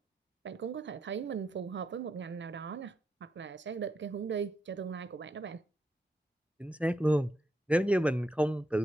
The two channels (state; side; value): normal; both; correlation 0.81